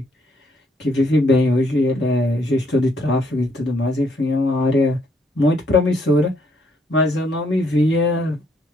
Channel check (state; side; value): normal; both; correlation 0.70